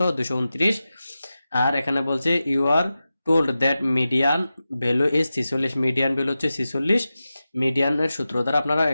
229। আর এখানে বলছে you are told that median value is 46, median value হচ্ছে 46। মিডিয়ানের সূত্র দ্বারা আপনারা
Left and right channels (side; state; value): both; inverted; correlation -0.93